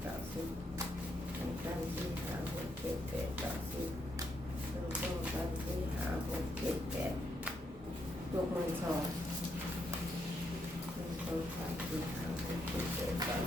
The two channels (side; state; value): both; normal; correlation 0.78